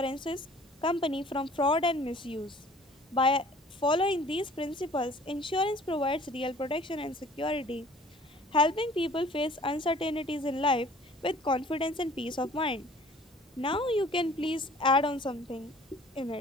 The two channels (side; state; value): both; normal; correlation 0.51